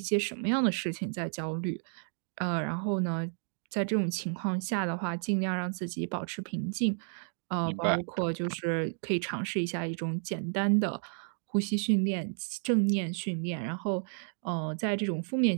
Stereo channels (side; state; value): left; silent; 57 dB below the other